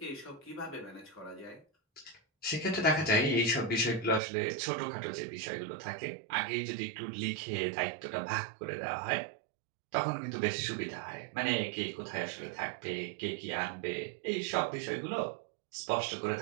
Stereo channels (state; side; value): drops out; left; at 4.2 s